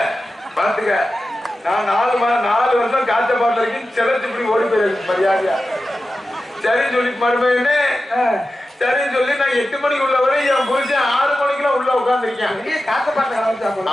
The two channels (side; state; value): both; normal; correlation 0.93